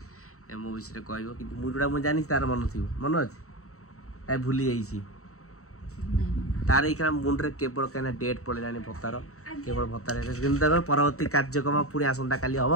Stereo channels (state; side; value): late; right; 0.64 ms